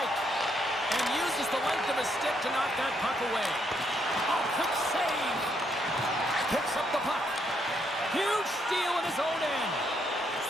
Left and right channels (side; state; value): both; normal; correlation 0.75